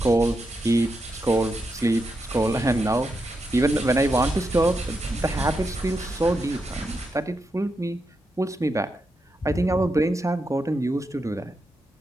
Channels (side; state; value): both; normal; correlation 0.85